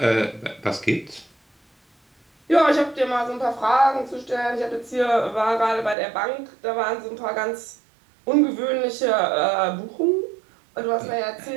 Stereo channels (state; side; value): drops out; left; at 6.0 s